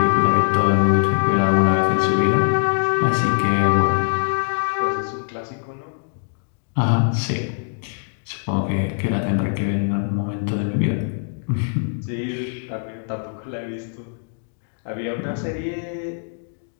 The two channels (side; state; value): right; silent; 64 dB below the other